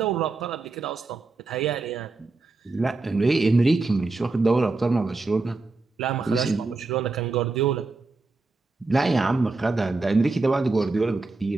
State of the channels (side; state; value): left; quieter; 3.6 dB